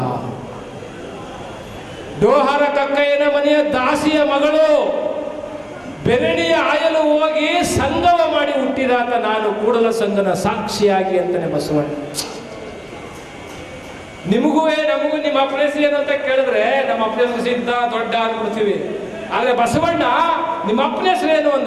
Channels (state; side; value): identical; both; correlation 1.00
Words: ಡೋಹಾರ ಕಕ್ಕಯ್ಯನ ಮನೆಯ ದಾಸಿಯ ಮಗಳು. ಬೆರಣಿಯ ಆಯಲು ಹೋಗಿ ಸಂಗಮ ಮಾಡಿ ಹುಟ್ಟಿದಾತ ನಾನು, ಕೂಡಲ ಸಂಗನ ಸಾಕ್ಷಿಯಾಗಿ ಅಂತಾನೆ ಬಸವಣ್ಣ. ನಿಮಗೂ ನಮಗೂ ನಿಮ್ಮ ಅಪ್ಪನ ಹೆಸರು ಏನು ಅಂತ ಕೇಳಿದ್ರೆ ನಮ್ಮ ಅಪ್ಪನ ಹೆಸರು ಸಿದ್ಧ ದೊಡ್ಡ ಅಂದ್ಬಿಡ್ತೀವಿ. ಆದ್ರೆ ಬಸವಣ್ಣ ನಿಮ್ಮ ಅಪ್ಪನ ಹೆಸರು ಏನು